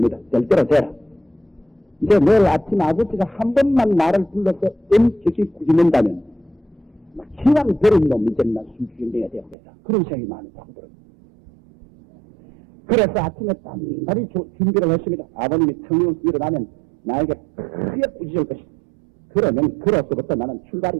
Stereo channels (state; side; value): drops out; left; at 9.6 s